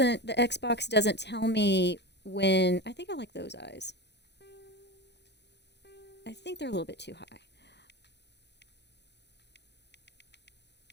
the Xbox doesn't tell me when, I think I like those eyes. I think they're a little bit too high.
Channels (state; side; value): late; right; 0.50 ms